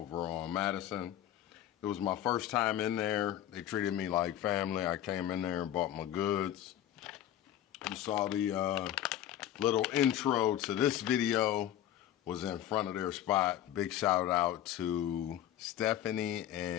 on Madison. It was my first time in there. They treated me like family. I came in there and bought my goods. You saw the little intro to this video was in front of their spot. Big shout out to Stephanie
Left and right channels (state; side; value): quieter; right; 11.9 dB